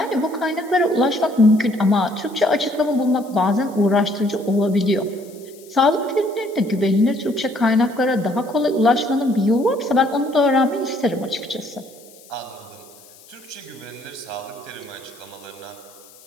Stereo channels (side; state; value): left; noise; hiss, 24 dB below the sound